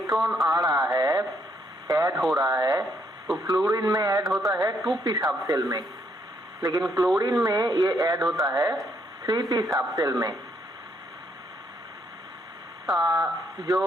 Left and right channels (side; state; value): both; normal; correlation 0.72